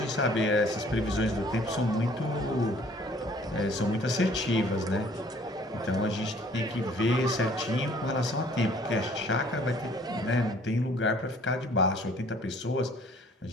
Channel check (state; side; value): normal; both; correlation 0.56